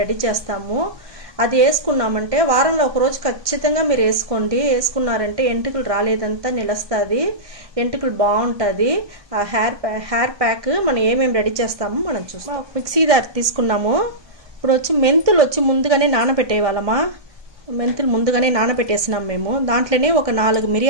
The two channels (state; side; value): late; left; 1.2 ms